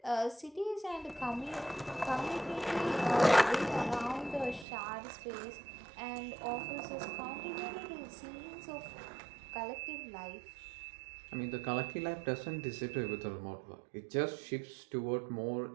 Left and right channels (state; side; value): drops out; left; at 4.7 s